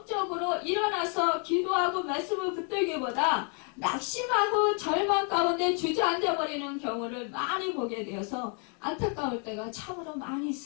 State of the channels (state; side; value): quieter; right; 39.3 dB